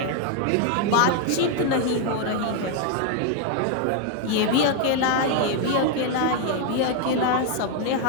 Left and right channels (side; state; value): both; different; correlation 0.01